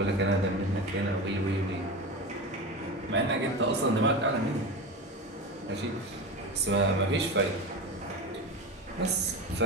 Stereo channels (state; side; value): normal; both; correlation 0.25